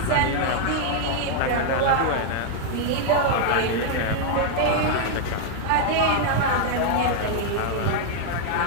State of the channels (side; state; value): both; different; correlation 0.00